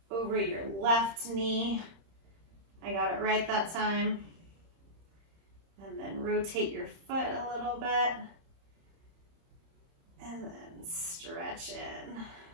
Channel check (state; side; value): late; left; 30 ms